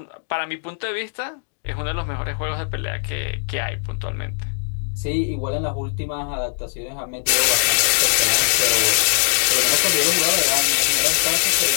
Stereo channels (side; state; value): right; silent; 62 dB below the other